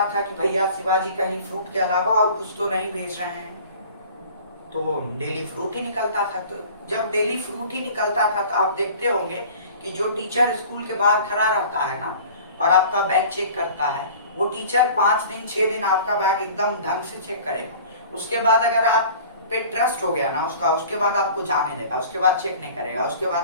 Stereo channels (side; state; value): both; inverted; correlation -0.44